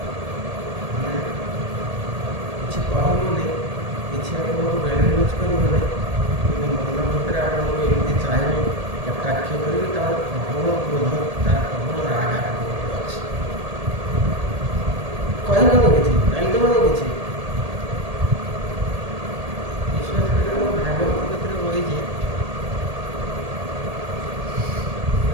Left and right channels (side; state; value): left; late; 1.8 ms